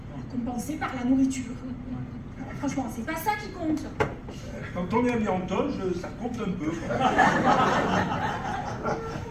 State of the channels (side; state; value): both; identical; correlation 1.00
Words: compensée par la nourriture. Franchement, c'est pas ça qui compte. Quand on est habillé en toge, ça compte un peu.